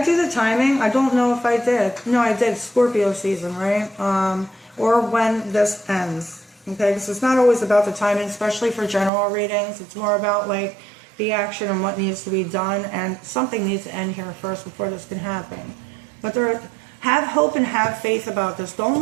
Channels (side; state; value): left; drops out; at 9.1 s